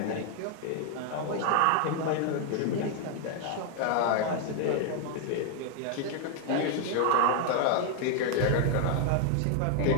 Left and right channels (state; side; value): different; both; correlation 0.00